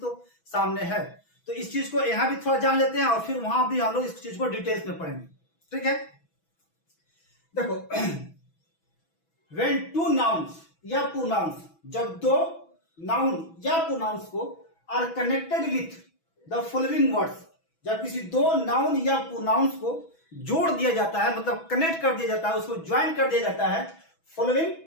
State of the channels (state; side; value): late; right; 6.1 ms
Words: सामने है, तो इस चीज को यहाँ भी थोड़ा जान लेते हैं और फिर वहां भी हम लोग इस चीज को डिटेल्स में पढ़ेंगे। ठीक है, देखो व्हेन टू नाउन्स या प्रोनाउंस, जब दो नाउन या प्रोनाउंस को are connected with the following words, जब किसी दो नाउन या प्रोनाउंस को जोड़ दिया जाता है, मतलब कनेक्ट कर दिया जाता है, उसको ज्वाइन कर दिया जाता है following